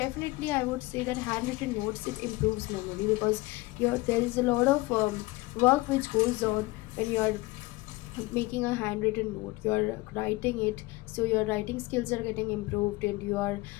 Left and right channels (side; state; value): right; quieter; 21.9 dB